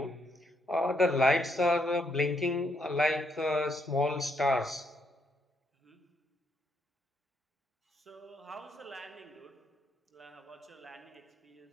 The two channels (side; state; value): both; normal; correlation 0.75